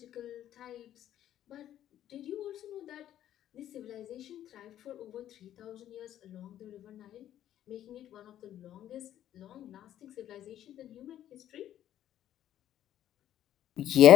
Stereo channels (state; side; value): quieter; right; 11.6 dB